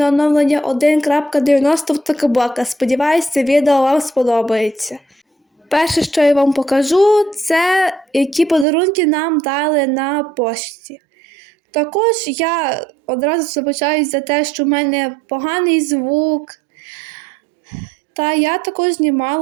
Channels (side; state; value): left; drops out; at 8.7 s